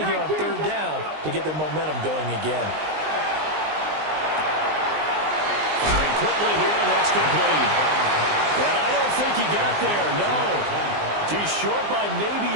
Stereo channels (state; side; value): late; left; 19 ms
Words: here on 3rd down to get their momentum going again. Firing quickly here, and that's complete. And I don't think he got there, no. He's short by